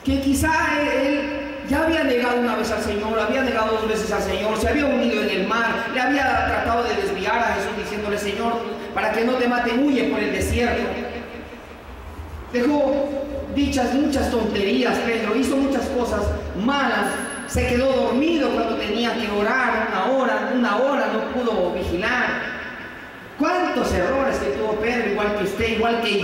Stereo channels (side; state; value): both; identical; correlation 1.00